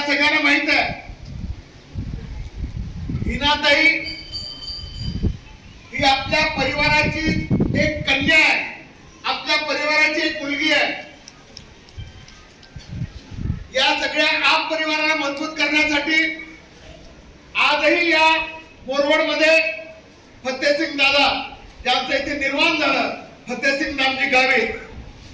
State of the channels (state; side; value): identical; both; correlation 1.00